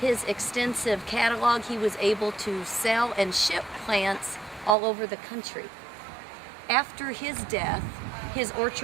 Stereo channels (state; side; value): drops out; left; at 4.8 s